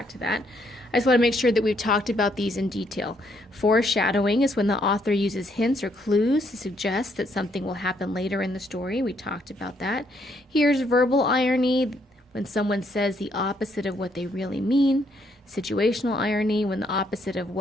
to that. I just want to make sure that we've talked about these in detail. Foreshadowing is when the author uses hints or clues to suggest that something will happen later in the story. We talked about that. Here's verbal irony, when someone says the opposite of what they really mean. Situational irony, when the opposite of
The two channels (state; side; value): normal; both; correlation 0.72